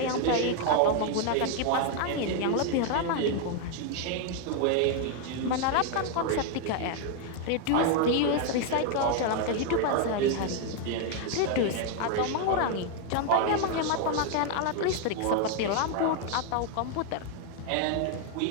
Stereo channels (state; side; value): different; both; correlation 0.01